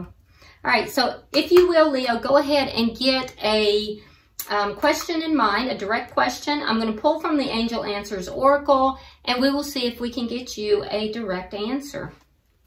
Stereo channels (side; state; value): both; identical; correlation 1.00